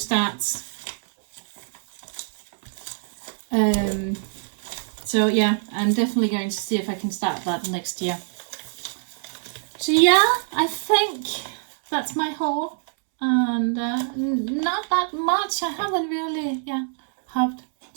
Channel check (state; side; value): silent; left; 62 dB below the other